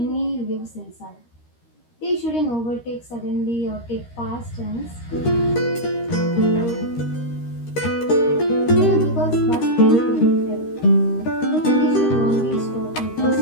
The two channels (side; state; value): right; late; 13 ms